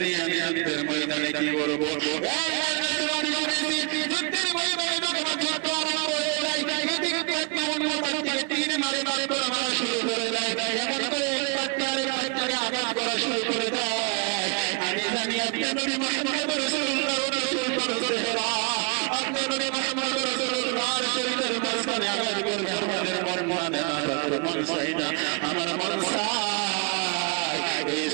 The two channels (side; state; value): left; quieter; 34.2 dB